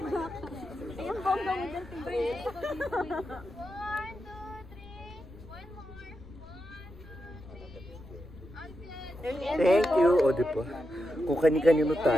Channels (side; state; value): left; noise; rumble, 24 dB below the sound